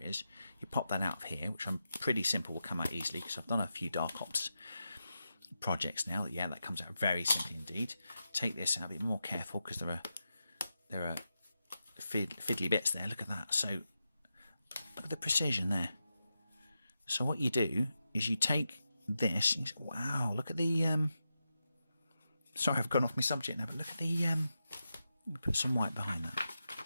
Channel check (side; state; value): both; inverted; correlation -0.89